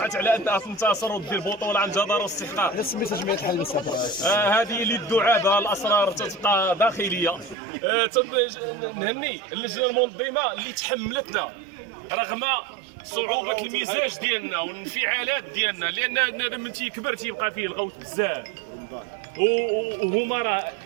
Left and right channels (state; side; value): drops out; left; at 7.6 s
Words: على انها تنتصر ودير بطوله عن جدارة واستحقاق. سميتها جمعيه الحريب هذه اللي الدعابه الاسرار تبقى داخليه. نهني اللجنه المنظمه اللي تحملتنا رغم صعوبة المزاج ديالنا والانفعالات ديالنا، لان من تيكبر تيبقى فيه الغوت بزاف وهما راه